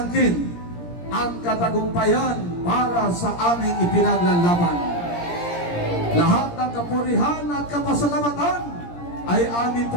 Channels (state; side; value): late; right; 17 ms